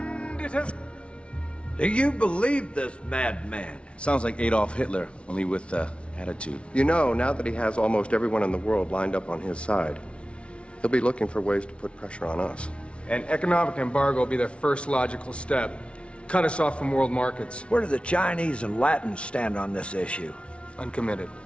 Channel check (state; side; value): late; right; 0.060 ms